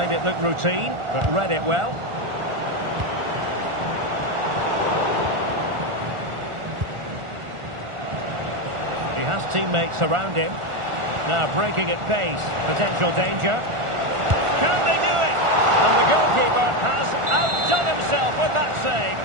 it look routine, but read it well. He has teammates around him. Now breaking at pace. Potential danger. Can they do it? And the goalkeeper has outdone himself with that save.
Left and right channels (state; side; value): late; left; 1.4 ms